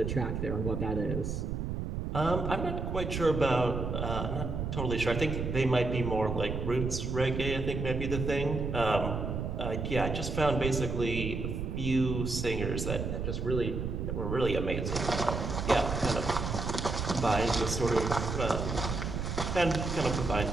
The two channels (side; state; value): right; noise; rumble, 3 dB below the sound